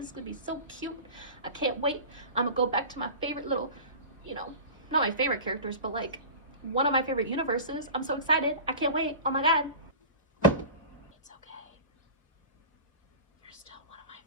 is gonna be so cute. I can't wait. I'm gonna go back to my favorite little, you know, not my favorite characters, but like one of my favorite universes. I'm so excited. I can't wait. Oh my God. It's okay. You're still one of my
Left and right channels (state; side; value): inverted; both; correlation -0.34